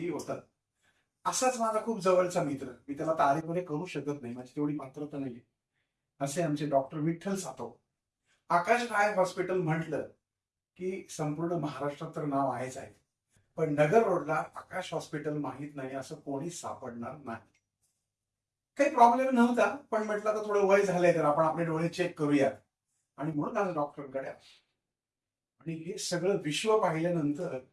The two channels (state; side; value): identical; both; correlation 1.00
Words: होतात. असाच माझा खूप जवळचा मित्र, मी त्याला तारीफने करू शकत नाही, माझी तेवढी पात्रता नाही, असे आमचे doctor Vitthal Satav. Akash I hospital म्हटलं की संपूर्ण महाराष्ट्रात तर नाव आहेच आहे, पण नगर रोडला आकाश हॉस्पिटल माहित नाही असं कोणीच सापडणार नाही. काही प्रॉब्लेम नव्हता, पण म्हटलं तर थोडं वय झालंय तर आपण आपले डोळे चेक करूया आणि म्हणून आज डॉक्टरकडे आलो. आणि हे सगळं विश्व पाहिल्यानंतर